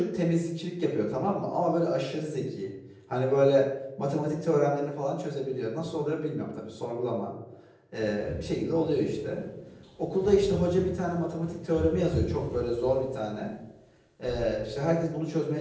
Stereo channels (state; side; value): identical; both; correlation 1.00